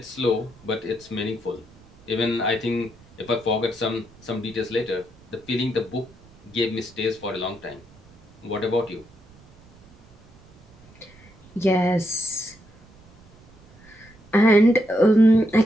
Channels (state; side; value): noise; right; rumble, 26 dB below the sound